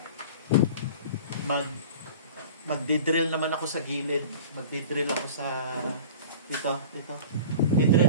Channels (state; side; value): inverted; both; correlation -0.40